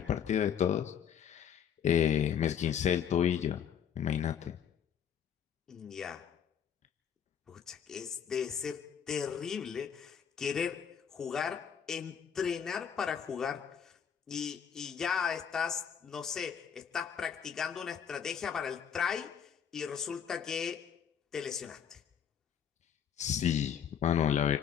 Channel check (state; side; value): quieter; right; 8.2 dB